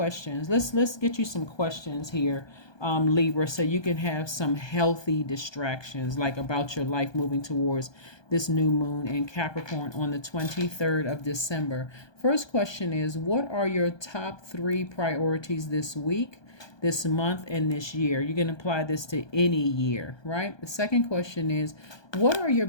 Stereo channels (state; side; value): late; right; 1.2 ms